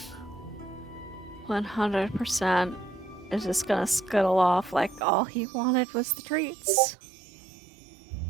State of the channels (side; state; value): left; drops out; at 5.1 s